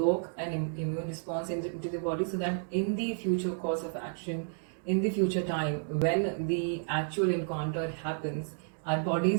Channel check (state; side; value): silent; left; digital silence